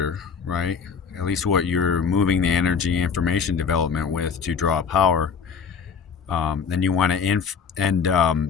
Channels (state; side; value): quieter; right; 6.4 dB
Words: right? At least what you're moving the energy information development with to draw power. Then you want to